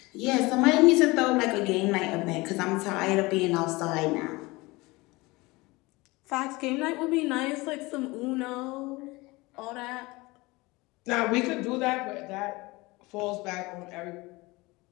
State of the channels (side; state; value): right; quieter; 22.7 dB